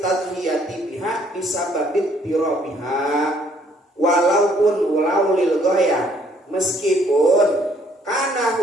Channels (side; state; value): both; normal; correlation 0.64